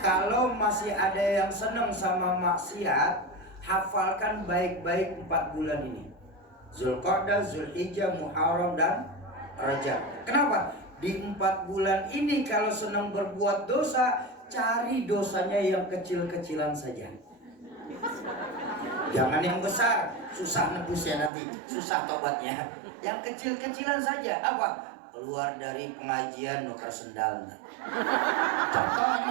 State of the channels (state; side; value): drops out; left; at 21.3 s